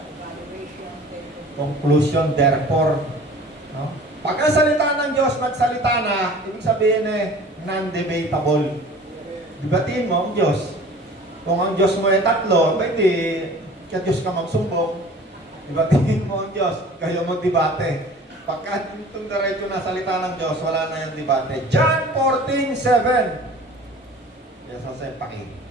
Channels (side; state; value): both; normal; correlation 0.45